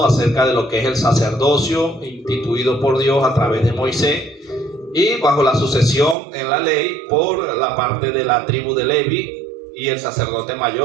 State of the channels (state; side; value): drops out; left; at 6.2 s